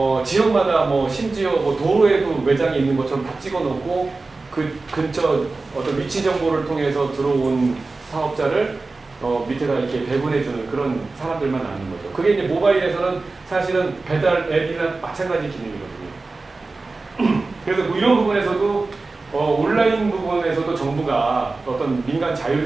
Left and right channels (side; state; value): left; quieter; 3.6 dB